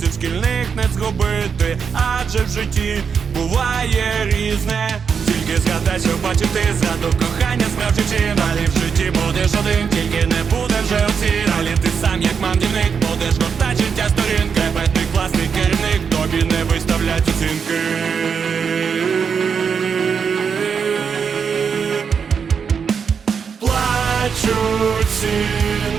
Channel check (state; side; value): quieter; left; 6.4 dB